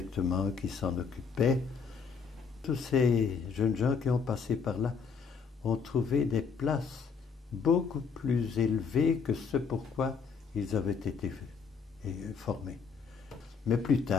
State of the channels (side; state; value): right; quieter; 5.7 dB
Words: qui s'en occupait. Tous ces jeunes gens qui ont passé par là ont trouvé des places beaucoup plus élevées que ce pourquoi ils avaient été formés. Mais plus